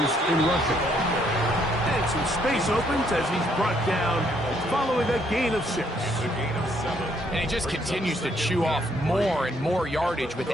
in rushing. And some space opens as he's brought down following a gain of 6. And he just continues to chew off more and more yardage with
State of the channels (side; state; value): both; normal; correlation 0.69